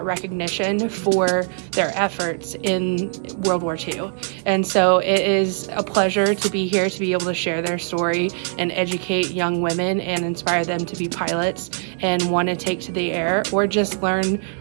recognition for their efforts in World War II. And so it is a pleasure to be here to be able to share their story and educate young women and inspire them to be pilots and want to take to the air, or just learn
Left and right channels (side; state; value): left; silent; 60 dB below the other